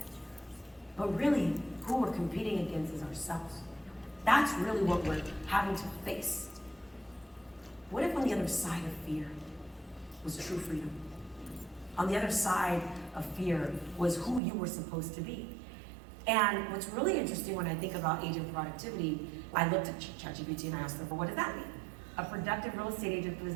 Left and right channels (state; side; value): drops out; left; at 14.4 s